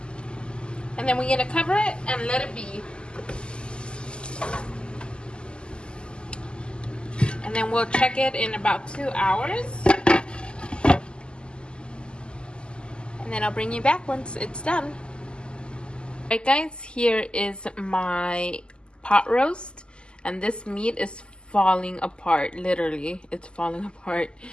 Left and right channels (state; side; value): late; right; 0.049 ms